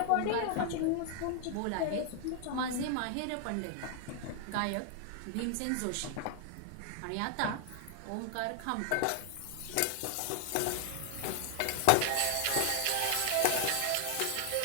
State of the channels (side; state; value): both; different; correlation 0.00